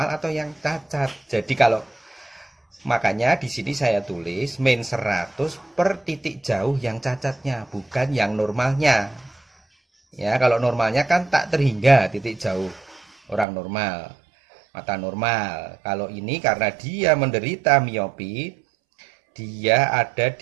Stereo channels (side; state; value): left; drops out; at 13.5 s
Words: atau yang cacat. Jadi kalau makanya di sini saya tulis min 100 per titik jauh yang cacatnya, bukan yang normalnya. Ya, kalau normalnya kan tak terhingga titik jauh orang normal, mata normal. Kalau ini karena dia menderita miopi, dia ada